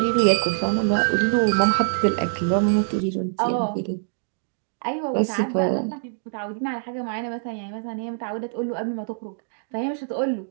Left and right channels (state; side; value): silent; left; digital silence